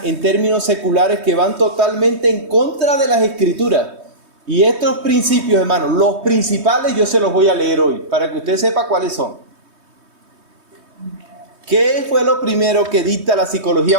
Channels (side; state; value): left; late; 3.2 ms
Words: en términos seculares que van totalmente en contra de las Escrituras. Y estos principios, hermanos, los principales, yo se los voy a leer hoy, para que usted sepa cuáles son. ¿Qué fue lo primero que dicta la psicología